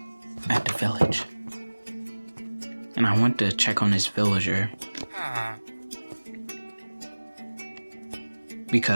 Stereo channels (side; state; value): both; inverted; correlation -1.00